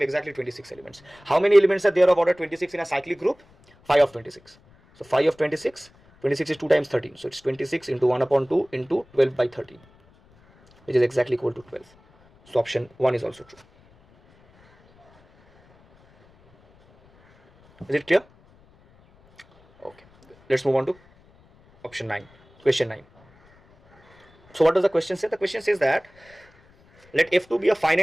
exactly 26 elements. How many elements are there of order 26 in a cyclic group? 5 of 26. So 5 of 26, 26 is 2 times 13. So it's 26 into 1 upon 2 into 12 by 13, which is exactly equal to 12. So option 1 is also true. Is it clear? Okay. Let's move on to option 9, question 9. So what does the question say? The question says that let F2 be a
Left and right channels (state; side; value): noise; left; rumble, 30 dB below the sound